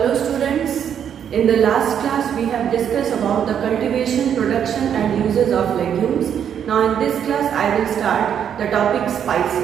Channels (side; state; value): left; quieter; 8.6 dB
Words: students, in the last class we have discussed about the cultivation, production and uses of legumes. Now in this class I will start the topic